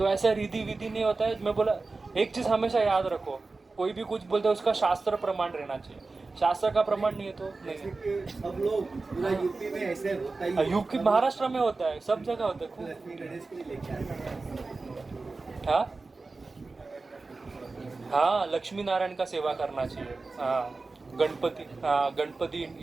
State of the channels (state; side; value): quieter; left; 3.7 dB